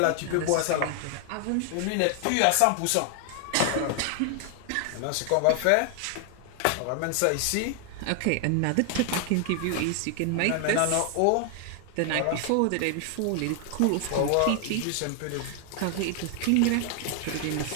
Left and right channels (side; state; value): both; different; correlation 0.00